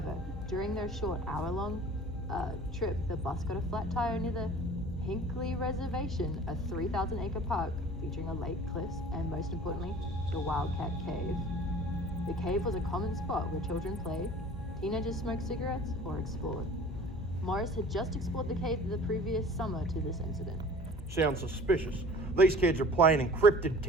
during their short hour-long trip, the bus got a flat tire near the Hinckley Reservation, a 3,000-acre park featuring a lake, cliffs, and most importantly, the Wildcat Cave. The cave was a common spot where children played, teenagers smoked cigarettes, or explored. Morris had just explored the cave the previous summer to this incident. Sounds suspicious. These kids are playing encrypted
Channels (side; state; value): both; normal; correlation 0.45